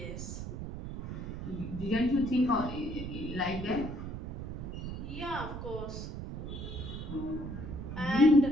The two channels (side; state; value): right; noise; rumble, 7 dB below the sound